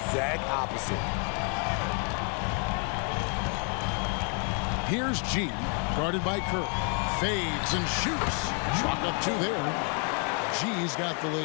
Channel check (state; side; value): quieter; right; 39.2 dB